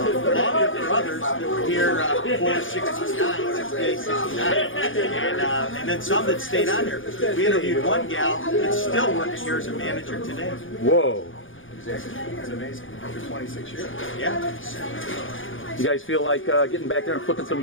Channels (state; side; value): late; right; 0.58 ms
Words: others that were here before 69, 68, 69. And then some that stayed on here. We interviewed one gal that's still working here as a manager today. Whoa. It's amazing. After 26 years. Yeah. You guys feel like getting back there and flipping some